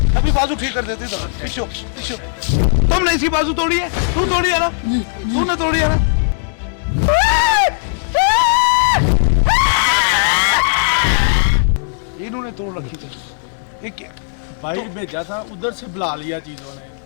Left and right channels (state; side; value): silent; right; digital silence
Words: अभी बाजू ठीक कर देते। पीछो पीछो, तुमने इसी बाजू तोड़ी है, तू तोड़ी है ना, तूने तोड़ी है ना। इन्होंने तोड़ रखी थी, एक बाहर भेजा था, उधर से बुला लिया चीजों ने।